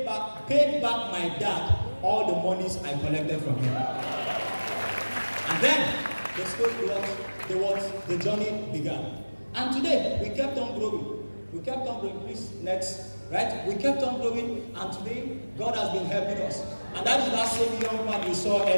back my dad all the monies I collected from him. And then the story the journey began. And today we kept on growing. Please, next. Right? We kept on growing, and today God has been helping us. And that is that same young man you saw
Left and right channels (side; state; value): both; inverted; correlation -1.00